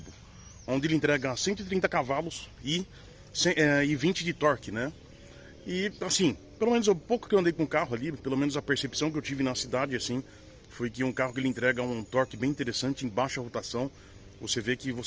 onde ele entrega 130 cavalos e 20 de torque, né? E assim, pelo menos o pouco que eu andei com o carro ali, pelo menos a percepção que eu tive na cidade, assim, foi que um carro que ele entrega um torque bem interessante em baixa rotação. Você vê que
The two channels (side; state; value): both; identical; correlation 1.00